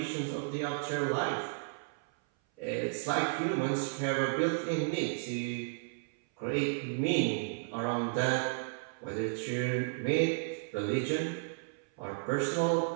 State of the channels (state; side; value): silent; left; 56 dB below the other